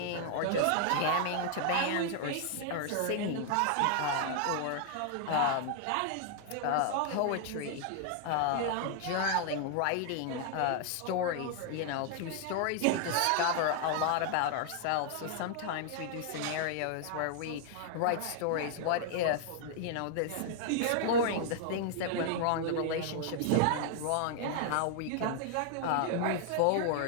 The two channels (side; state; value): both; different; correlation 0.00